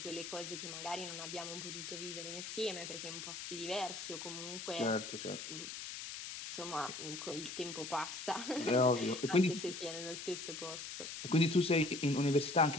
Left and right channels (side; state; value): left; noise; hiss, 8 dB below the sound